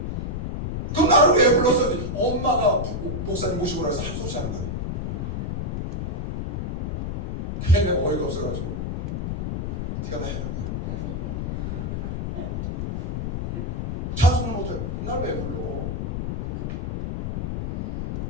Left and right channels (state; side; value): noise; left; rumble, 2 dB below the sound